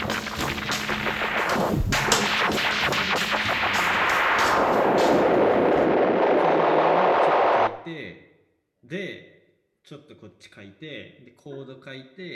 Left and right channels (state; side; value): identical; both; correlation 1.00